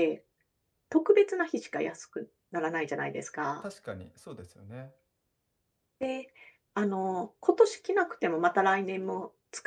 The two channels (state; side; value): identical; both; correlation 1.00